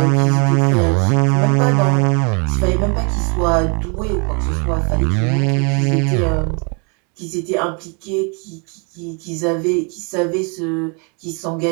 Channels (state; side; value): quieter; left; 34.7 dB